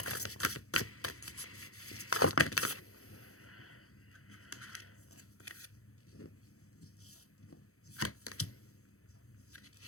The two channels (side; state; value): right; late; 0.64 ms